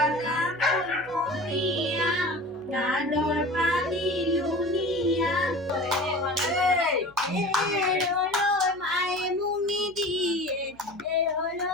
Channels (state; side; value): noise; left; hum, 28 dB below the sound